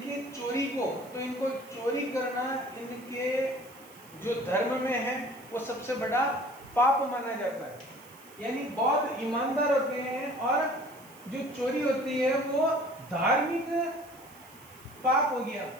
चोरी को, तो इनको चोरी करना इनके जो धर्म में है वो सबसे बड़ा पाप माना जाता है। यानी बहुत ईमानदार होते हैं और जो चोरी होती है वो धार्मिक पाप हो गया।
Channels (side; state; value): right; noise; hiss, 23 dB below the sound